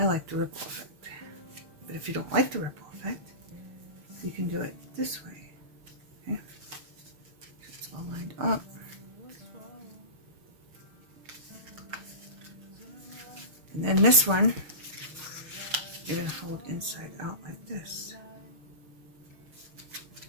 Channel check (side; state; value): left; late; 6.6 ms